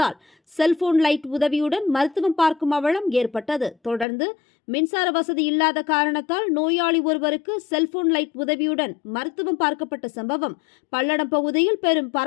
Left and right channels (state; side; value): drops out; right; at 4.0 s